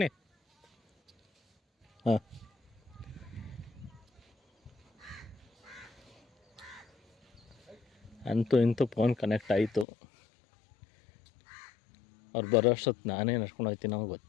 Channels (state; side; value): drops out; right; at 9.9 s